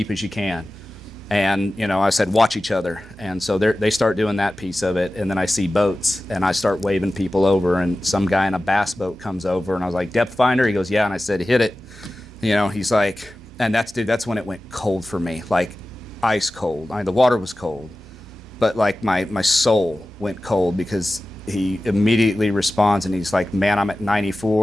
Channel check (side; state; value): both; normal; correlation 0.95